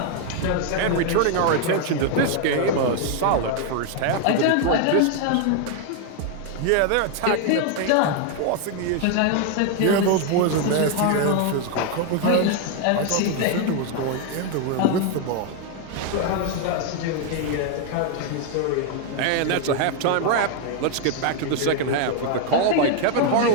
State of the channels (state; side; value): different; both; correlation 0.01